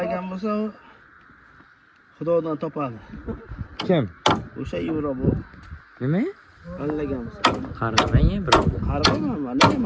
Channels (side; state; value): both; identical; correlation 1.00